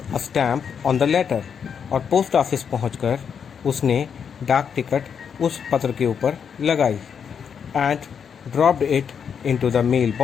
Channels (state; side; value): quieter; right; 7.1 dB